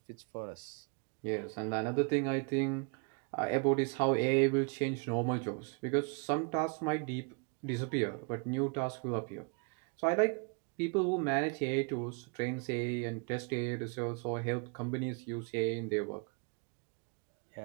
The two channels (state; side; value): quieter; left; 35.2 dB